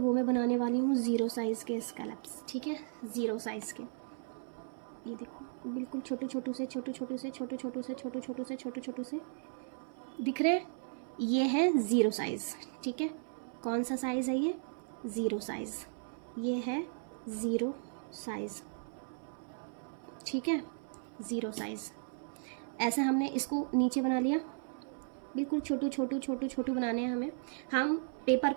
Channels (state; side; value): silent; left; 54 dB below the other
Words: वो मैं बनाने वाली हूँ 0 साइज़ के स्कैलप्स, ठीक है, 0 साइज़ के। ये देखो बिल्कुल छोटे छोटू से दिख रहे हैं, ये है 0 साइज़, ठीक है। कौन सा साइज़ है ये, 0 साइज़, ये है 0 साइज़, ठीक है, 0 साइज़। ऐसे हमने इसको नीचे बना लिया, बिल्कुल छोटू बनाने हैं हमें। हम पेपर